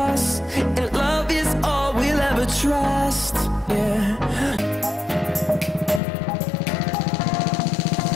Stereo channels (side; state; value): right; drops out; at 6.0 s